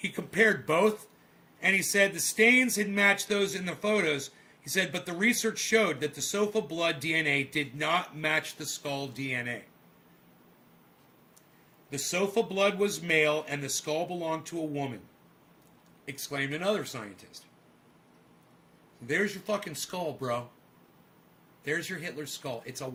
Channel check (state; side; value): identical; both; correlation 1.00